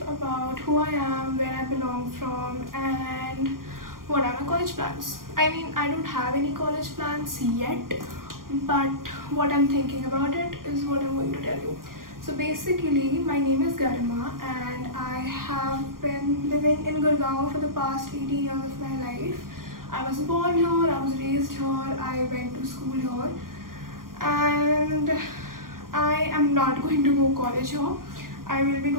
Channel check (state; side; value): late; left; 0.91 ms